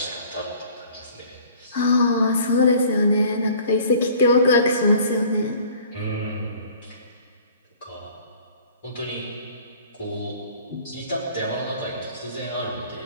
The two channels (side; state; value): both; inverted; correlation -0.51